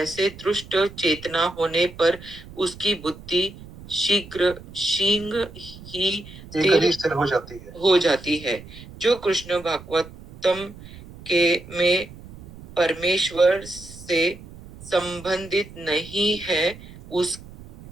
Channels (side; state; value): right; noise; rumble, 17 dB below the sound